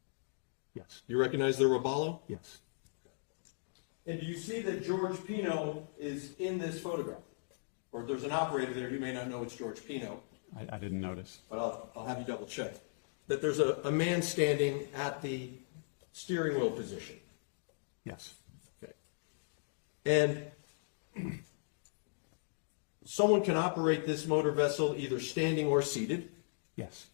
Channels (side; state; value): right; silent; digital silence